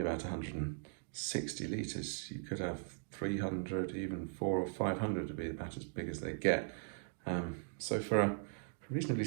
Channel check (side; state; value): left; silent; digital silence